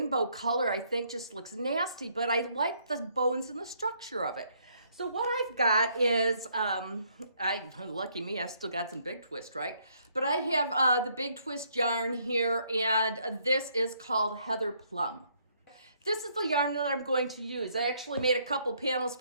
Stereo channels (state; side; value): inverted; both; correlation -0.70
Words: color I think just looks nasty, but I like the bones and the structure of it. So what I've got is, lucky me, I've still got some Big Twist, right? But I have the Big Twist yarn here, and this is called Heather Plum. This is the yarn that I'm going to use. I actually made a couple panels